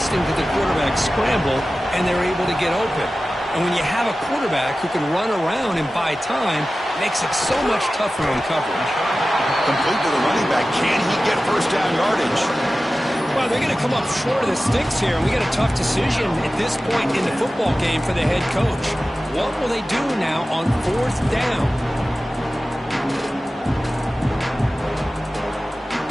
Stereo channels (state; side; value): normal; both; correlation 0.95